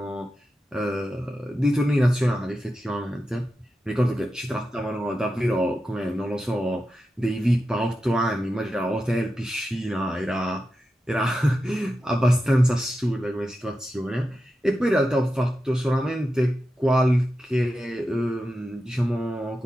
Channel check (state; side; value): normal; both; correlation 0.90